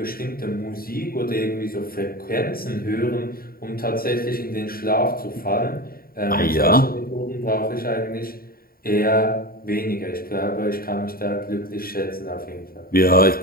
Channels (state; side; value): late; right; 0.43 ms